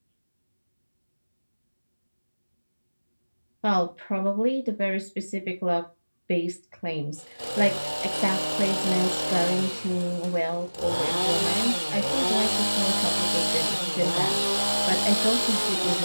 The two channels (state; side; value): inverted; both; correlation -1.00